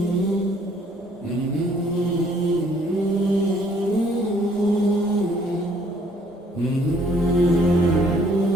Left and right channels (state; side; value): normal; both; correlation 0.62